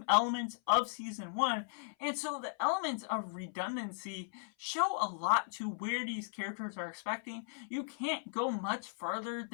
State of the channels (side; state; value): right; silent; 53 dB below the other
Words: elements of season 1, and so the elements of redundancy show a lot to where these characters are expecting. You can't go much further